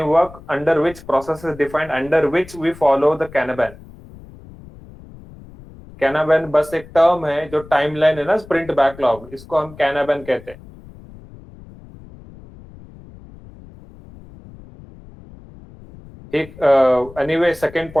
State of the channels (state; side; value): noise; left; rumble, 20 dB below the sound